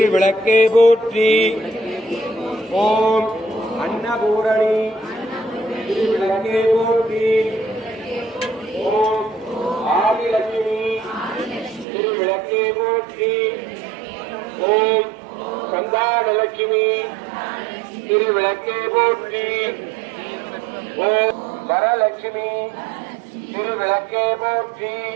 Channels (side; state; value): left; drops out; at 11.9 s